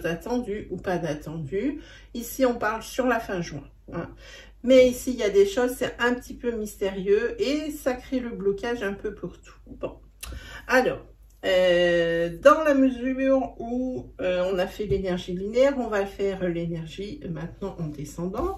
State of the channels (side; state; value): both; identical; correlation 1.00